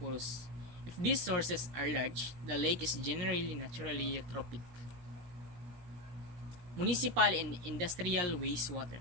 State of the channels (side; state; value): left; late; 17 ms